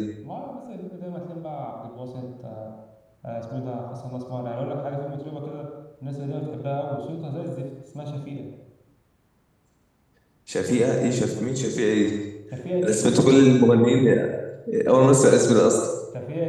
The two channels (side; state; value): both; identical; correlation 1.00